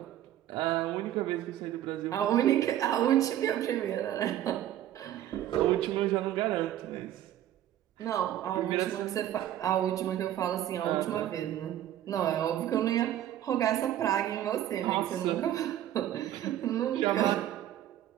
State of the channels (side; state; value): left; quieter; 12.2 dB